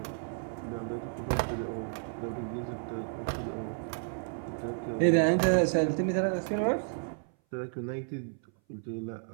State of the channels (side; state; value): left; silent; 57 dB below the other